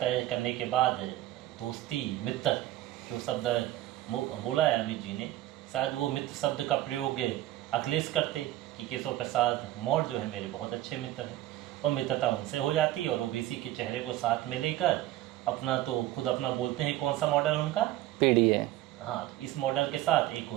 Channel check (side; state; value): left; quieter; 14.8 dB